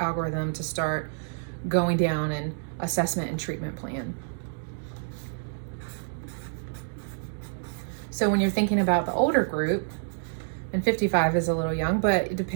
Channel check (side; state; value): left; silent; digital silence